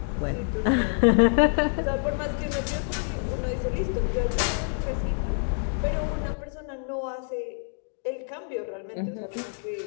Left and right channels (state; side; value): silent; right; 60 dB below the other